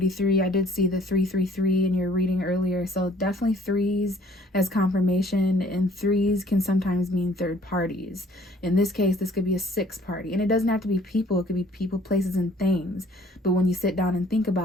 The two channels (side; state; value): both; normal; correlation 0.57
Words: I did see the 333 in your reading earlier. So definitely 3s as confirmation, and 3s can sometimes mean third parties. In this case, this could be a 6th party. And it doesn't have to be people. It could be people, places, and things. But when you sit down and think